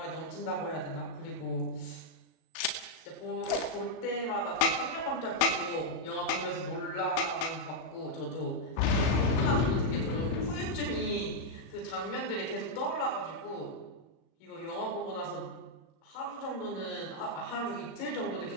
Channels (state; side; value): late; right; 37 ms